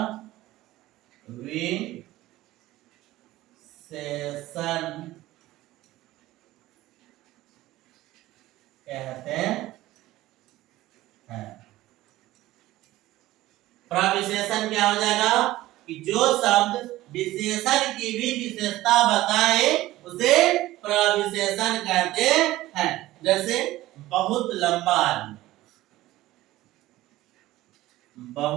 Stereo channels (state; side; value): quieter; left; 16.5 dB